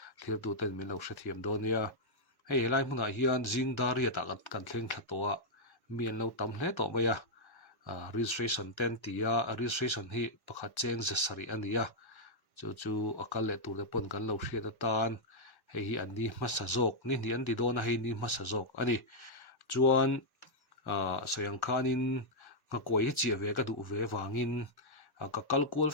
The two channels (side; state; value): right; late; 1.1 ms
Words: clear tu ten min lo hre thiam don nia hei helai hmunah hian zingdar ria ta kan thleng thla to a mian lo tam hle to mai registration ten tia registration hi pakhat cheng zasari ania chu akal le tur te pon kan lo hriat atan hei hi an ni hmasa zawk ni an ti dona hei ni hmasa zawk ani chuan soyang khanin nga koi hi chia ve ka du ve wangin ka kal kual